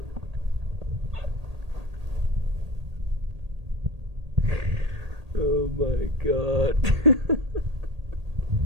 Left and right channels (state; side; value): late; left; 1.8 ms